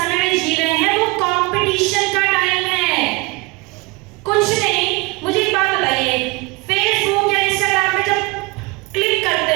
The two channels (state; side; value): quieter; left; 24.9 dB